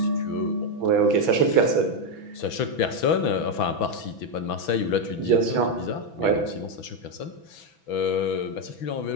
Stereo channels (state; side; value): late; right; 6.1 ms